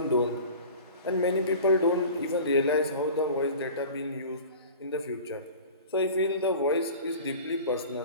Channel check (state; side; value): inverted; both; correlation -0.39